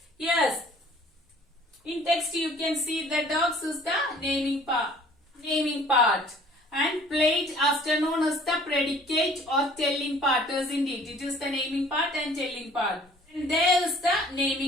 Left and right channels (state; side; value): normal; both; correlation 0.53